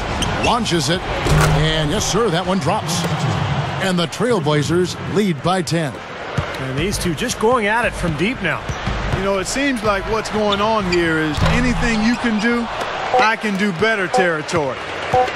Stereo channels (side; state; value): both; identical; correlation 1.00